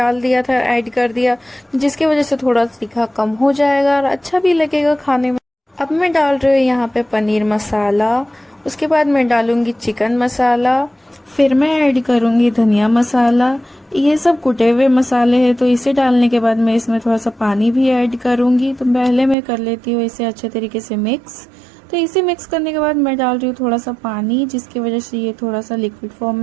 दिया था, ऐड कर दिया, जिसकी वजह से थोड़ा तीखा कम हो जाएगा और अच्छा भी लगेगा खाने में। अब मैं डाल रही हूँ यहाँ पे पनीर मसाला, उसके बाद मैं डालूंगी चिकन मसाला, फिर मैं ऐड करूंगी धनिया मसाला। ये सब कुटे हुए मसाले हैं, तो इसे डालने के बाद मैं इसमें थोड़ा सा पानी भी ऐड करूंगी। तो पहले मैं कर लेती हूँ इसे अच्छे तरीके से मिक्स। तो इसे मिक्स करने के बाद मैं डाल रही हूँ थोड़ा सा पानी, जिसकी वजह से ये थोड़ा सा लिक्विड फॉर्म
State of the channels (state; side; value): drops out; left; at 19.4 s